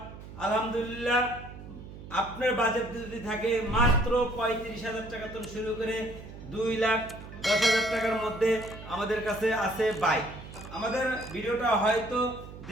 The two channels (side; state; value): right; noise; hum, 14 dB below the sound